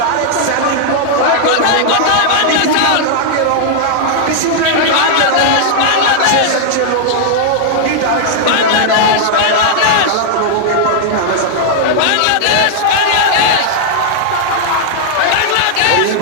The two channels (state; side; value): different; both; correlation -0.01